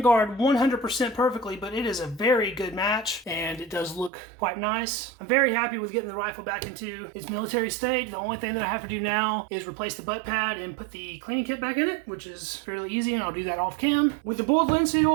100% perfectly, but it is a very good match, and it does look quite nice. I'm very happy with getting the rifle back into its military state. The only thing that I have to do now is replace the butt pad and put the cleaning kit back in it, which is fairly easy, and I'll do that off cam. With the boiled linseed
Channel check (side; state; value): left; drops out; at 4.1 s